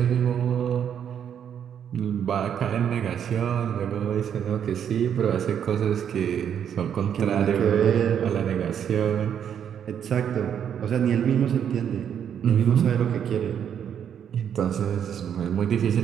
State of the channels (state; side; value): quieter; left; 8.7 dB